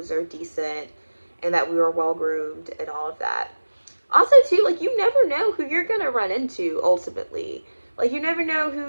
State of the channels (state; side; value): inverted; both; correlation -1.00